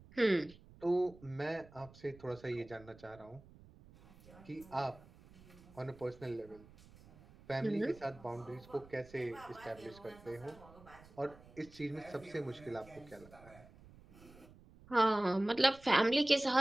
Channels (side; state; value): right; noise; rumble, 22 dB below the sound